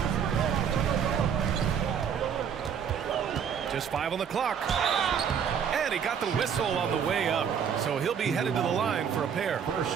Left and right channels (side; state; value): left; quieter; 7.6 dB